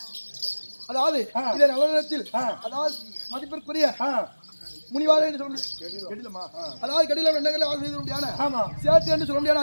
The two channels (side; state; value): both; inverted; correlation -1.00